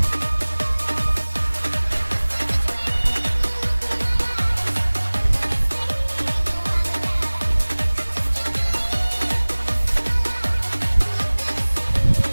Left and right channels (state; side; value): inverted; both; correlation -1.00